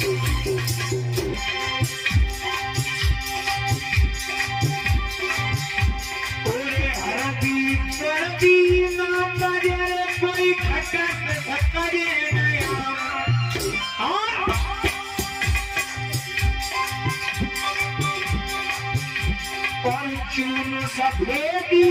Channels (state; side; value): identical; both; correlation 1.00